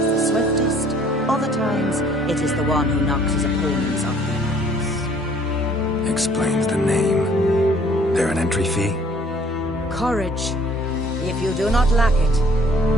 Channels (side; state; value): both; normal; correlation 0.58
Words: the swiftest, other times it is the one who knocks his opponents off their marks. Explains the name. There an entry fee? Courage. If you do not lack it,